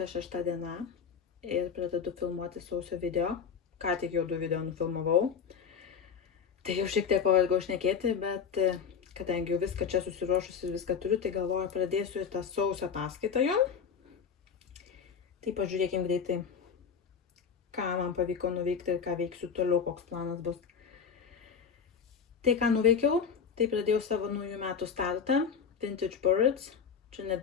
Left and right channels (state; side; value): quieter; right; 6.6 dB